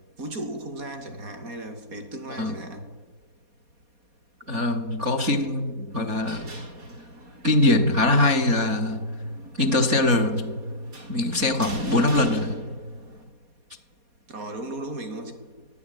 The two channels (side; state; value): left; late; 4.2 ms